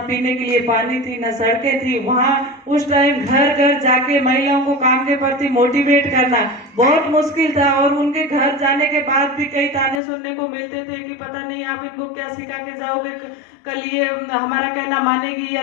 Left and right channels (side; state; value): right; drops out; at 10.0 s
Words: के लिए पानी थी, न सड़कें थी। वहां उस टाइम घर घर जाके महिलाओं को काम के प्रति मोटिवेट करना बहुत मुश्किल था, और उनके घर जाने के बाद भी कई ताने सुनने को मिलते थे कि पता नहीं आप इनको क्या सिखा के जाओगे, कल ये हमारा कहना मानेगी या